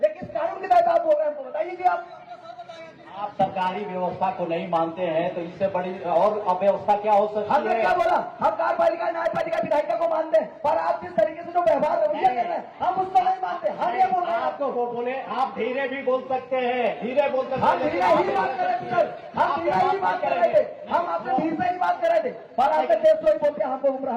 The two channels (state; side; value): identical; both; correlation 1.00